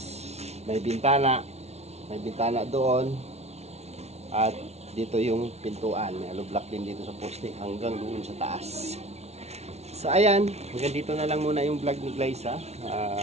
may bintana doon at dito yung pintuan. May hollow block din dito sa poste hanggang doon sa taas. So ayan, hanggang dito na lang muna yung vlog ni Glyza.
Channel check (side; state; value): left; late; 0.31 ms